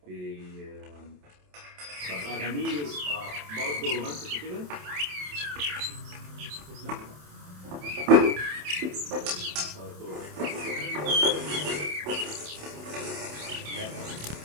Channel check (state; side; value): late; left; 27 ms